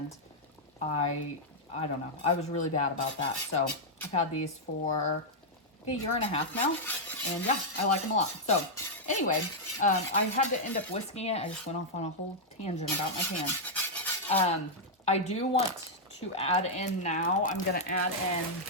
I don't know. I was really bad about that. So I've had these for a year and a half now. And yeah, I like them a lot. So anyway, I had to end up whisking it. I just went off on a whole tangent about my pan. I do want to add in now, I'm going to add in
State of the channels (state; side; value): normal; both; correlation -0.05